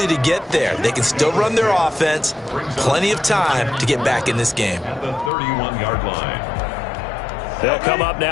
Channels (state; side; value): drops out; right; at 5.3 s